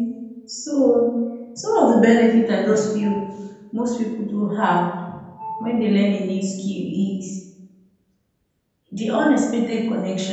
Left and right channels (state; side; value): identical; both; correlation 1.00